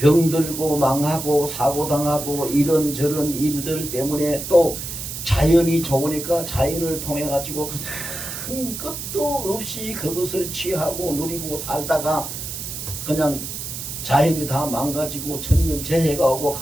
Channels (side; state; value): right; noise; hiss, 7 dB below the sound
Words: 망하고 사고당하고 이런저런 일들 때문에 또 자연이 좋으니까 자연을 통해 가지고 그냥 끝도 없이 그것을 취하고 누리고 살다가 그냥 자연이 다 망가지고 천년재해가 오고